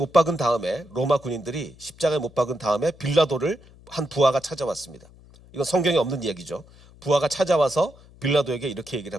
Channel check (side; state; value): left; noise; hum, 24 dB below the sound